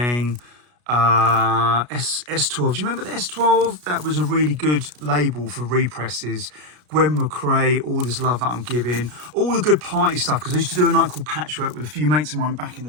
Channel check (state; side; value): late; left; 33 ms